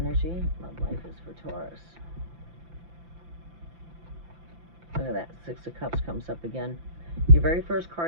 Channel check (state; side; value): late; left; 5.9 ms